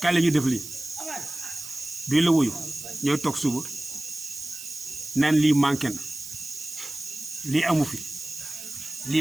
kaay la ñu def lii duñ la wuyu ñooy toog suba naan lii manqué na lii amu fi lii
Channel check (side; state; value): right; noise; hiss, 11 dB below the sound